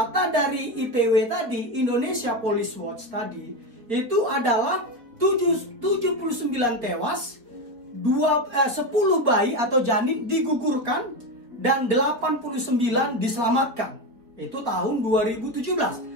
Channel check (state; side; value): late; left; 4.1 ms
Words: dari IPW tadi, Indonesia Police Watch tadi, itu adalah 79 tewas, 10 bayi atau janin digugurkan, dan 89 diselamatkan. Itu tahun